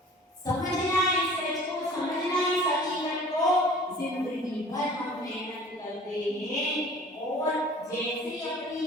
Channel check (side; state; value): both; normal; correlation 0.47